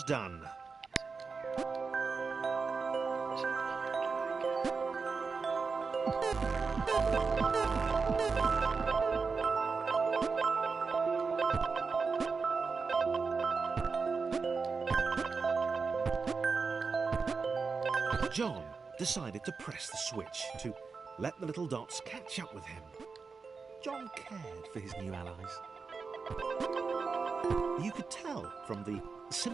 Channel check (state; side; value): quieter; left; 4.8 dB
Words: done. John decided to press the switch to let the little dots catch up with him. John cared for his new allies. You could tell from the